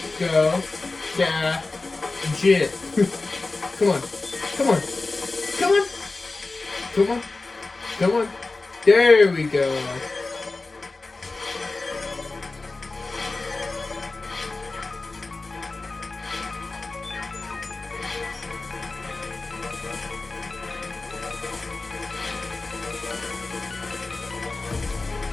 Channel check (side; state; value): right; quieter; 3.5 dB